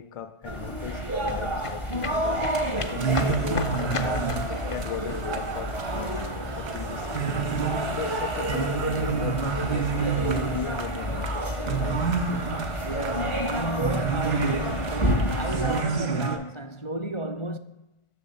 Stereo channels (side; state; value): right; late; 1.5 ms